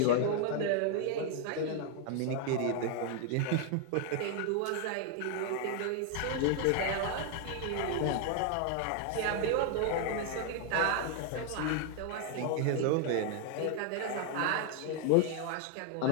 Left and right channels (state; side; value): different; both; correlation 0.00